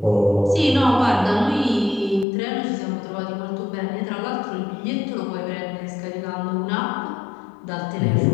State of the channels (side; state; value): right; drops out; at 2.2 s